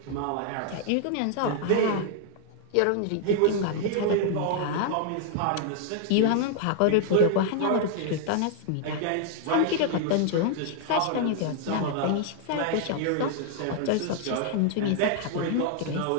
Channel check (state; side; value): different; both; correlation 0.00